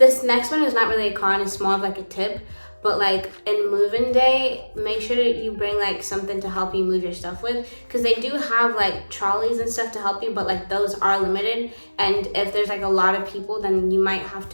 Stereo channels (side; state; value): both; inverted; correlation -1.00